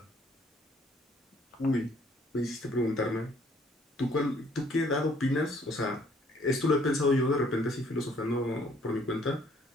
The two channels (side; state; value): both; normal; correlation 0.62